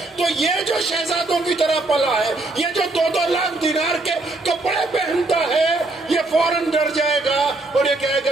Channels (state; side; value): quieter; left; 3.1 dB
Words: تو یہ جو شہزادوں کی طرح پلا ہے، یہ جو 2 لاکھ دینار کے کپڑے پہنتا ہے، یہ فوراً ڈر جائے گا اور یہ کہے